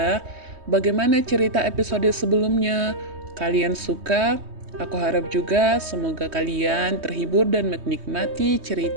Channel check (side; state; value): left; late; 3.2 ms